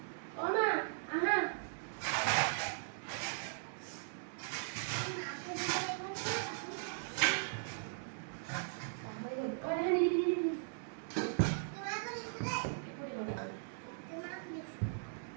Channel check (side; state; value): left; silent; digital silence